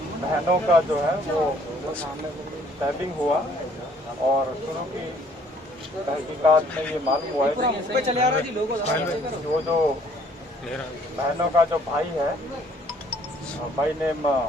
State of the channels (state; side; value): normal; both; correlation 0.60